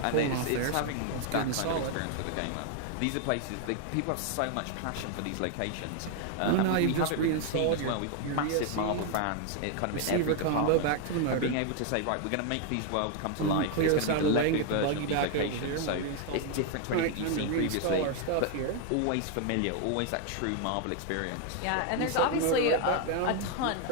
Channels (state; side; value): different; both; correlation 0.01